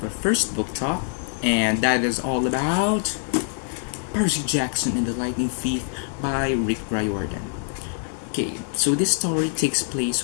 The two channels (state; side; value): silent; right; digital silence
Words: our first book talk, and that is all about Percy Jackson and the Lightning Thief by Riordan. Okay, so this story takes